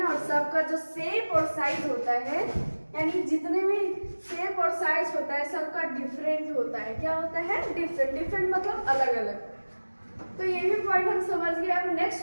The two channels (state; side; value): inverted; both; correlation -1.00